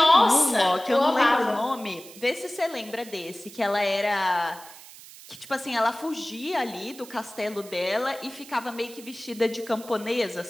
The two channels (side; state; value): right; noise; hiss, 18 dB below the sound